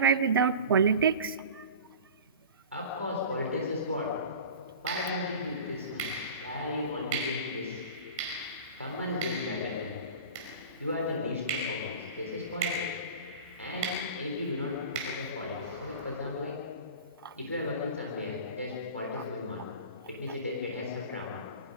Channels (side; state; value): both; inverted; correlation -0.36